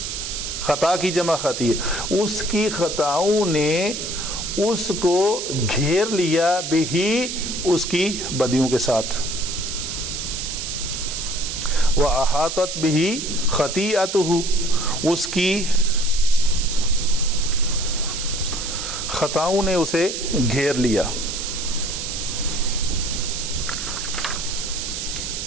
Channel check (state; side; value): noise; right; hiss, 5 dB below the sound